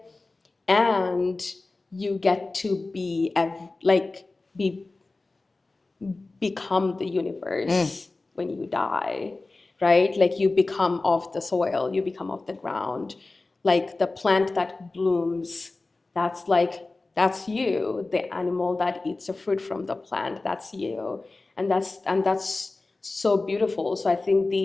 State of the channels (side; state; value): right; quieter; 3.3 dB